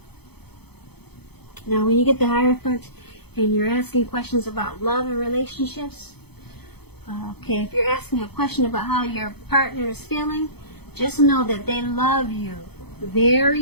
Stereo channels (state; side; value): late; right; 0.98 ms